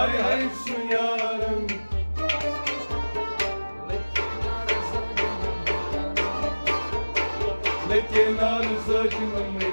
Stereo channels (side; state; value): both; inverted; correlation -1.00